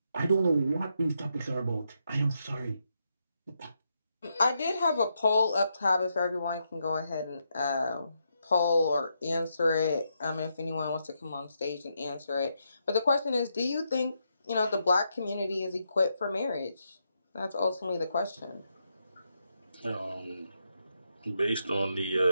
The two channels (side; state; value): both; inverted; correlation -0.81